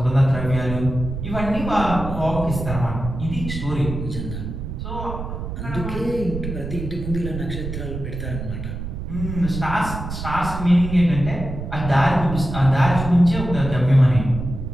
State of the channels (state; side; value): noise; right; rumble, 6 dB below the sound